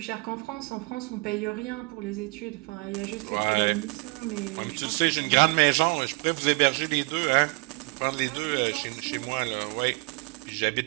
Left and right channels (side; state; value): left; quieter; 29.6 dB